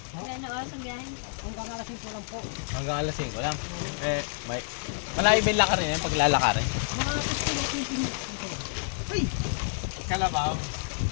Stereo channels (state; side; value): silent; right; digital silence